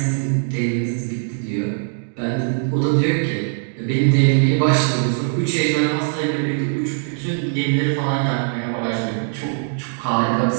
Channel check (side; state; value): left; silent; digital silence